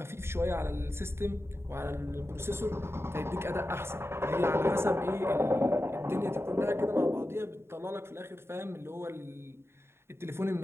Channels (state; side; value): late; left; 0.12 ms